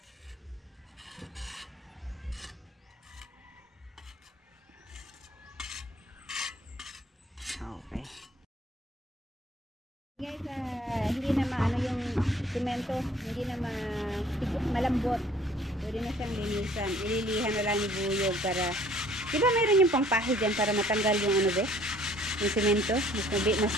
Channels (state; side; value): normal; both; correlation 0.56